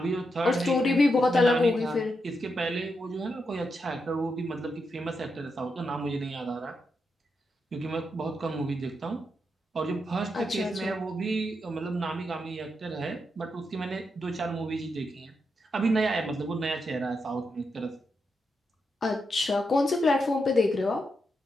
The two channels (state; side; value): normal; both; correlation 0.84